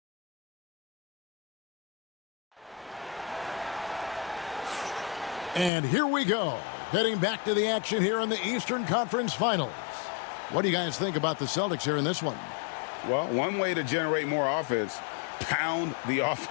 And here we go, heading back to the action here in the Eastern Conference Finals. What do you guys think about the Celtics here in this one? Well, one way to generate more offense, pound the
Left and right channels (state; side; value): drops out; right; at 5.7 s